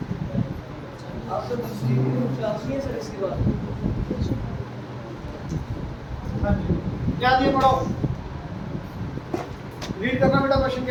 आप तो दूसरी क्लास में है सर इसके बाद। हाँ जी, क्या दिया पढ़ो, रीड करना बेटा। क्वेश्चन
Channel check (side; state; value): both; identical; correlation 1.00